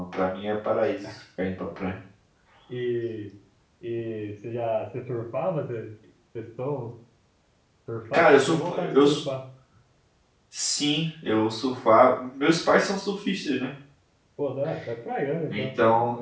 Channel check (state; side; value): identical; both; correlation 1.00